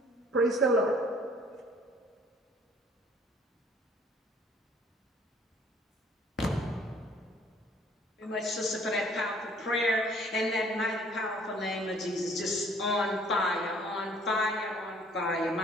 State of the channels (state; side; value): normal; both; correlation 0.58